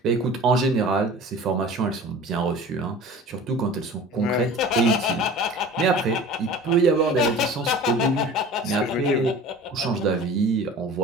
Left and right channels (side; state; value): both; normal; correlation 0.41